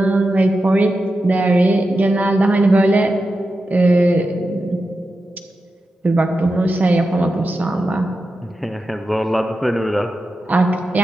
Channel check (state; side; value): normal; both; correlation 0.90